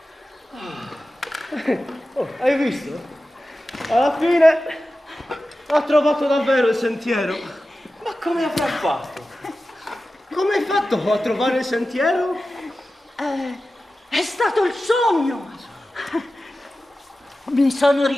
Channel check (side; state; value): both; normal; correlation 0.94